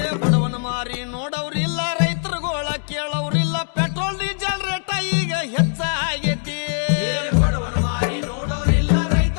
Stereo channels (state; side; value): silent; right; digital silence